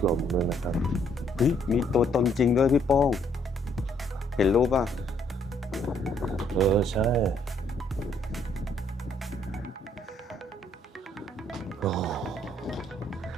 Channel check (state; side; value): normal; both; correlation 0.68